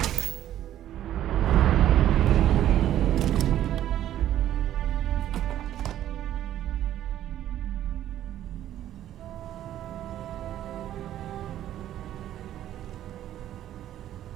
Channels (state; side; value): quieter; left; 12.1 dB